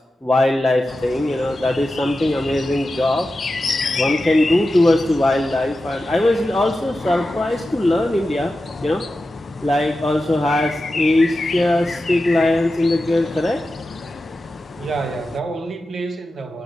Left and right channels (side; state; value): both; normal; correlation 0.92